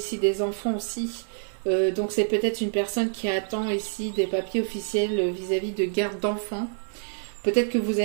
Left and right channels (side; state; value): left; silent; digital silence